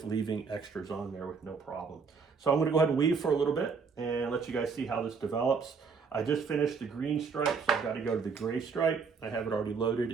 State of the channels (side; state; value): left; quieter; 5.4 dB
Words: leaving extras on there with no problem. So I'm going to go ahead and weave for a little bit and let you guys see how this develops. I just finished the green stripe, so I've got to go to the gray stripe. I have it already loaded